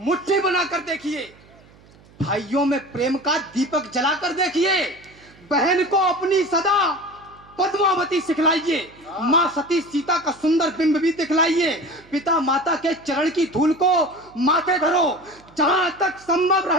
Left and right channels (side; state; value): right; noise; hum, 26 dB below the sound